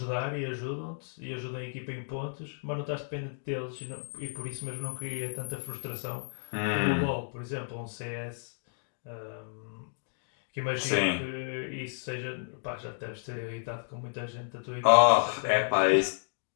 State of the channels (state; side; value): silent; right; digital silence